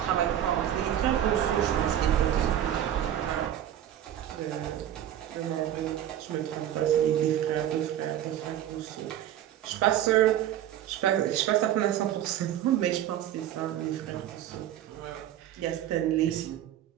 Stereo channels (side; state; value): left; quieter; 11.3 dB